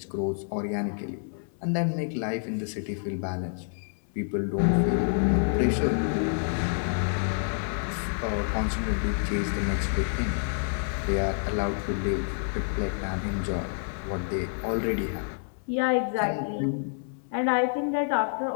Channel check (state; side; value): silent; right; 59 dB below the other